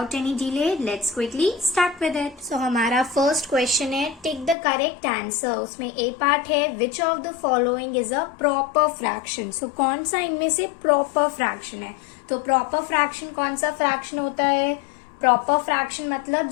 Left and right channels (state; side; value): drops out; right; at 4.5 s